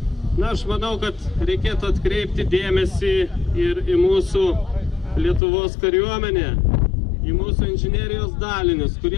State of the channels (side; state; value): right; drops out; at 5.4 s